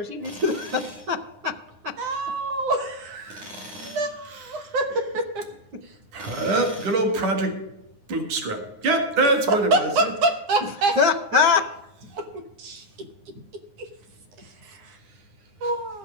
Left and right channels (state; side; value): late; left; 9.7 ms